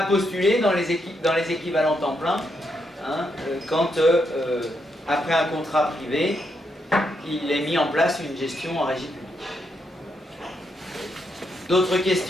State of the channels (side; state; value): both; normal; correlation 0.80